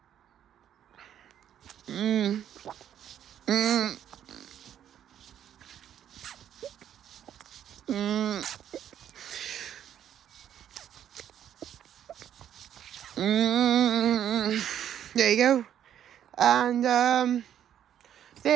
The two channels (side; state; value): left; quieter; 10.1 dB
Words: There you go. And